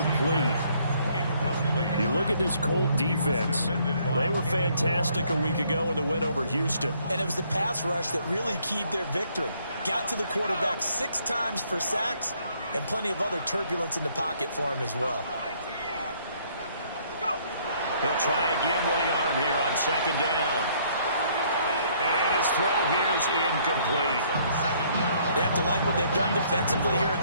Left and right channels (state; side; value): inverted; both; correlation -0.65